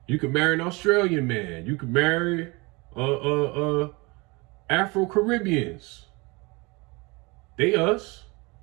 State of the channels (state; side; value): quieter; left; 26.4 dB